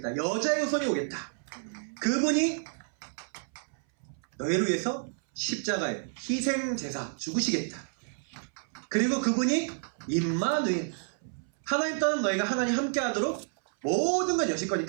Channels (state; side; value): silent; left; 58 dB below the other